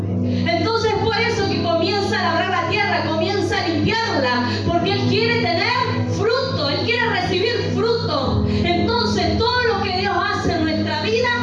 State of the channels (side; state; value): both; identical; correlation 1.00